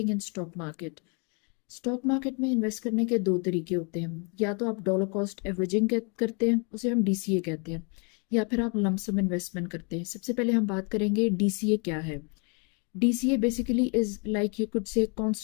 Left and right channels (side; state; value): right; quieter; 35.5 dB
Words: in stock market. Stock market में invest करने के दो तरीके होते हैं। या तो आप डॉलर कॉस्ट एवरेजिंग करते हैं, उसे हम डीसीए कहते हैं, या फिर आप लमसम इन्वेस्टमेंट करते हैं। सबसे पहले हम बात करेंगे डीसीए क्या है। DCA basically is like you could say